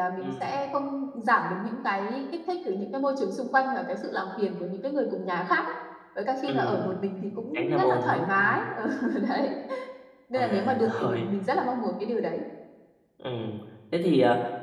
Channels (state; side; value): identical; both; correlation 1.00